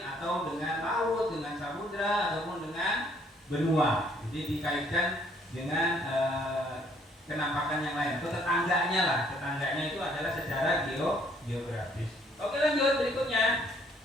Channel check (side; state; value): both; normal; correlation 0.64